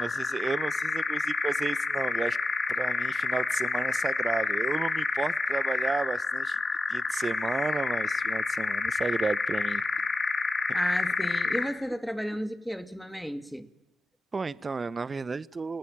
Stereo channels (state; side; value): normal; both; correlation 0.91